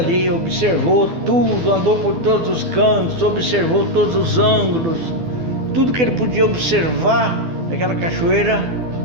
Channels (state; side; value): late; left; 12 ms